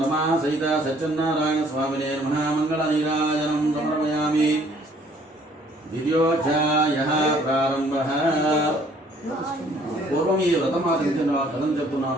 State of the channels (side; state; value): both; normal; correlation 0.60